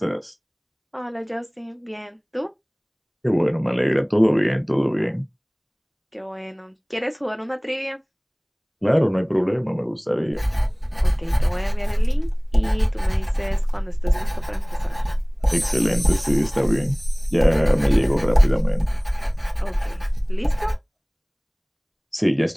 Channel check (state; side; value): identical; both; correlation 1.00